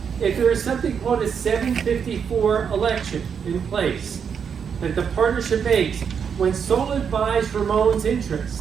If there is something called a 754 election in place that the partnership makes, when Solid buys Ramon's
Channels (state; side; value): quieter; left; 7.0 dB